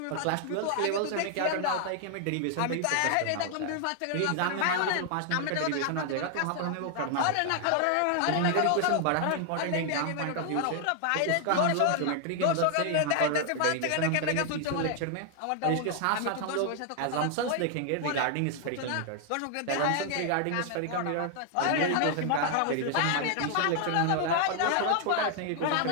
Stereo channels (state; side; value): different; both; correlation 0.00